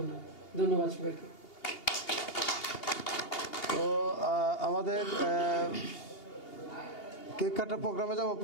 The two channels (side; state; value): right; late; 2.8 ms